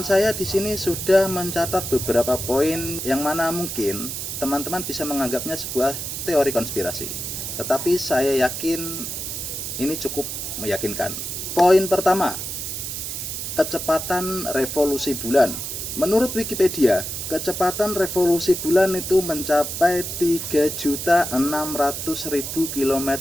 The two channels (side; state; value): right; noise; hiss, 5 dB below the sound